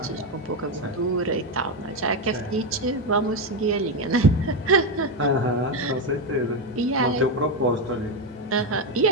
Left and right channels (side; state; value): both; normal; correlation 0.08